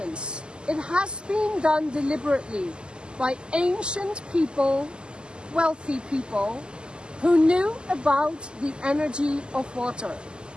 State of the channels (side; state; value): left; late; 0.048 ms